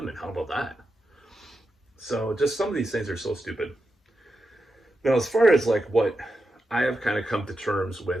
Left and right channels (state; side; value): normal; both; correlation 0.88